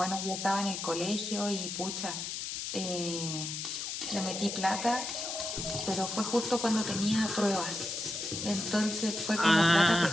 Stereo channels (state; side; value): noise; left; hiss, 5 dB below the sound